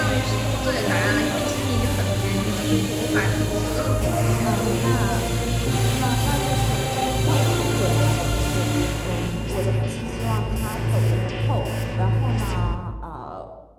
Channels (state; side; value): identical; both; correlation 1.00